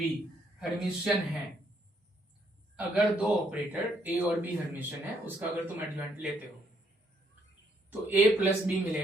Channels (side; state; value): both; normal; correlation 0.71